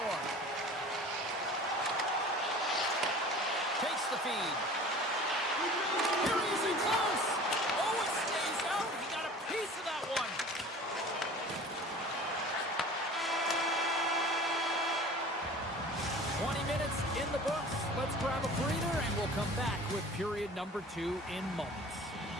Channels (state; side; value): normal; both; correlation 0.43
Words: Takes the feed. Here he is in close. Oh, it stays out. He got a piece of that one. In the books. Let's grab a breather and we'll come back with period number 2 in moments.